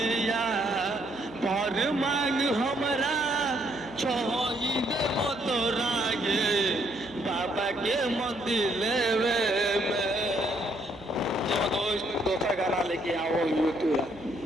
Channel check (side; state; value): right; noise; hum, 22 dB below the sound